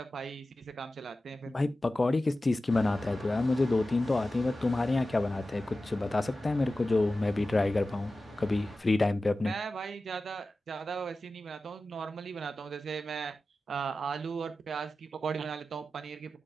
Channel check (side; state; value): both; normal; correlation 0.94